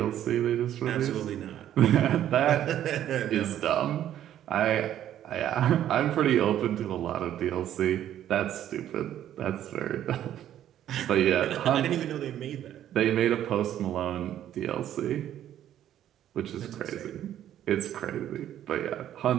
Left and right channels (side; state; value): left; quieter; 11.3 dB